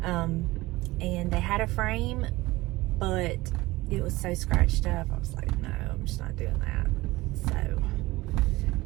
And they had a frame, but it was so scratched up. I was like, no, I'm just not doing that. So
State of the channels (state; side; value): quieter; left; 19.7 dB